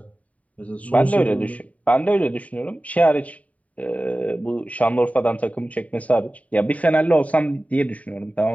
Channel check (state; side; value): late; right; 0.069 ms